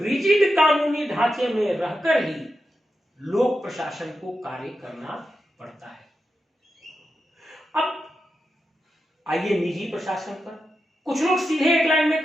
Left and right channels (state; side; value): normal; both; correlation 0.88